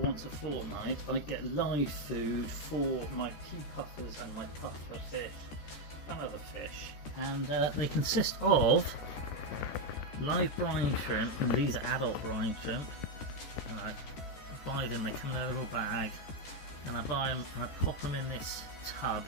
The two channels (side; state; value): right; late; 14 ms